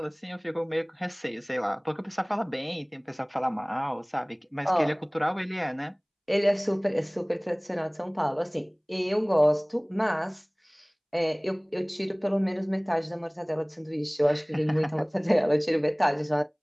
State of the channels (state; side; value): identical; both; correlation 1.00